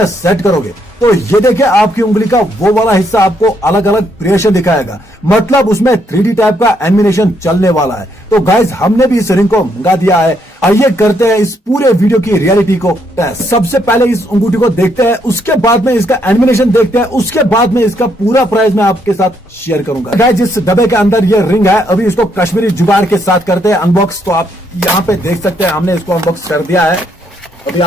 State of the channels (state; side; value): normal; both; correlation 0.74